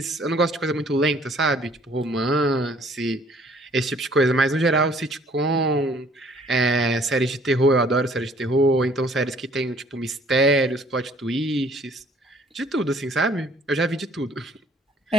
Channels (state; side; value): normal; both; correlation 0.58